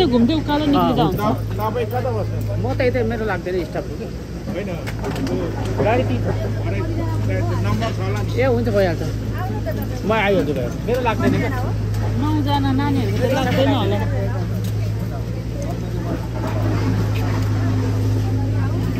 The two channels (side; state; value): both; identical; correlation 1.00